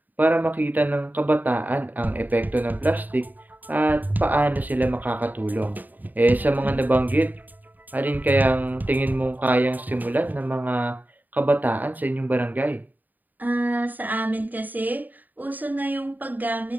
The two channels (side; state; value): left; late; 0.085 ms